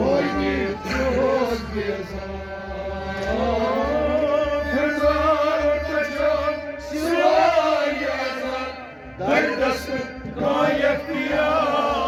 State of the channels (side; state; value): both; identical; correlation 1.00